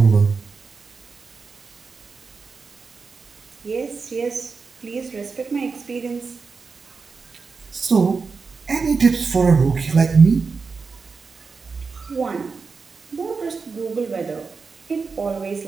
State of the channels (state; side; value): quieter; left; 4.8 dB